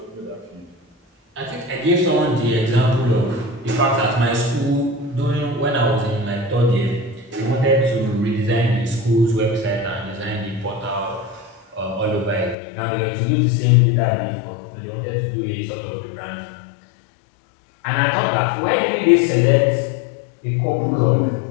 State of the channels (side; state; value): right; drops out; at 12.6 s